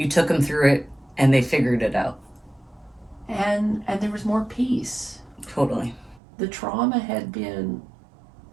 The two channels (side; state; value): left; drops out; at 6.2 s